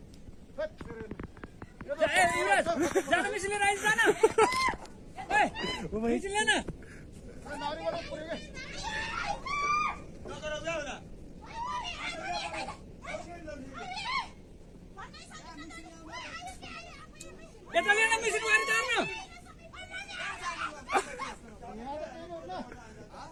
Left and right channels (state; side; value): identical; both; correlation 1.00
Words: जाना मिशन ले राइस जाना मिशन लेना नारी वाला पूरे यता लेना मिशन मारि जान्न